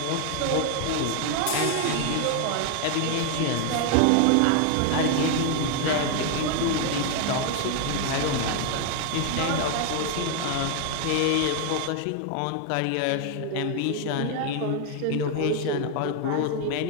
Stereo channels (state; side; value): different; both; correlation 0.01